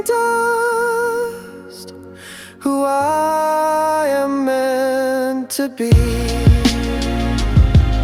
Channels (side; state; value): both; identical; correlation 1.00